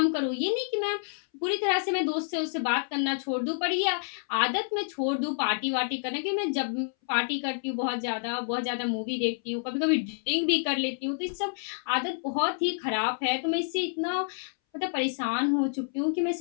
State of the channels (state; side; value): silent; right; 59 dB below the other